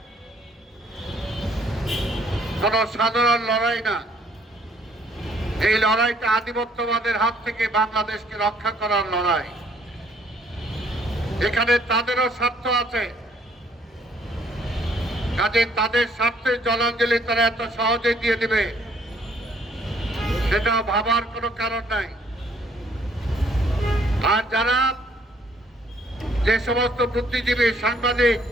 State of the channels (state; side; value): normal; both; correlation 0.63